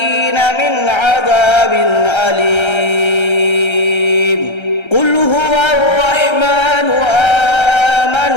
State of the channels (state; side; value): late; right; 1.3 ms